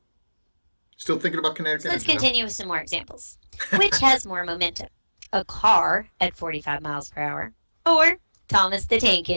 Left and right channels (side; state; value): both; inverted; correlation -1.00